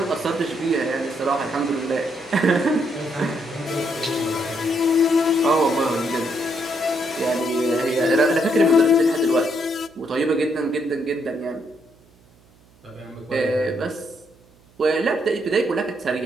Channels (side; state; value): right; noise; hum, 30 dB below the sound